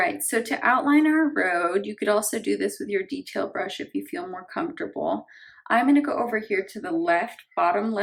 so to outline our road, you could also do this with your detail brush if you feel more comfortable. I'm going to go over here to the left, bottom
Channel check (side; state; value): both; identical; correlation 1.00